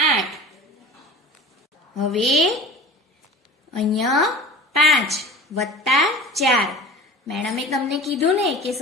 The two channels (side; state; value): both; normal; correlation 0.37